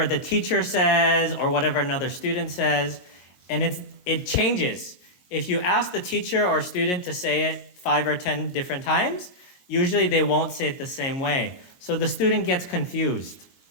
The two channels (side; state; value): right; late; 22 ms